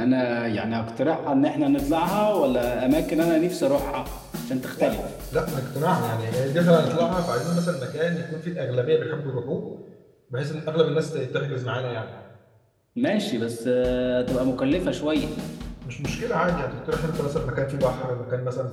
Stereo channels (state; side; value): identical; both; correlation 1.00